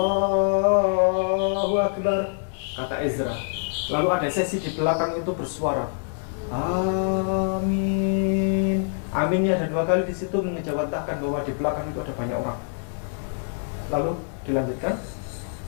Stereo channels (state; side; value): silent; right; digital silence